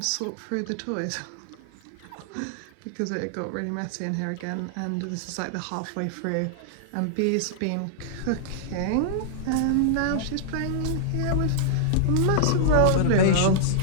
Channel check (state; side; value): different; both; correlation -0.01